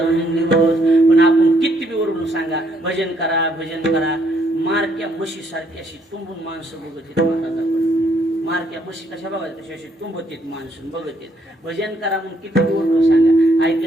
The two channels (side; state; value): both; normal; correlation 0.71